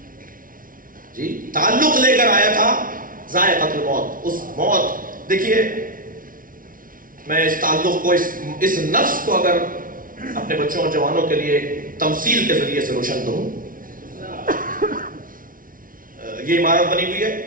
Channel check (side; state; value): left; late; 0.40 ms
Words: جی تعلق لے کر آیا تھا ذائقۃ الموت. اس موت، دیکھیے میں اس تعلق کو اس نفس کو اگر اپنے بچوں اور جوانوں کے لیے تمثیل کے ذریعے سے روشن کروں. یہ عمارت بنی ہوئی ہے،